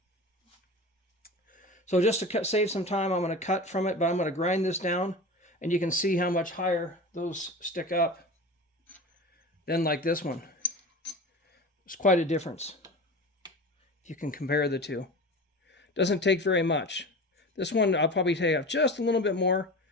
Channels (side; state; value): both; normal; correlation 0.32